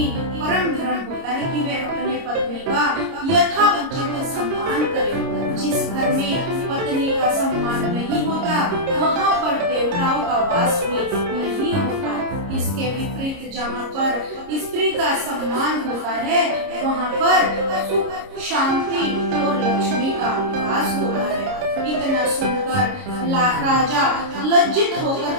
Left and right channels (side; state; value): left; late; 30 ms